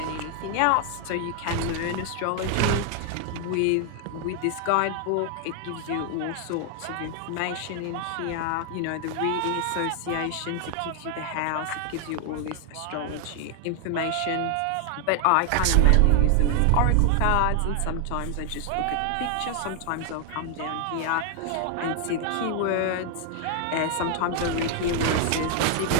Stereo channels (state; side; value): different; both; correlation 0.00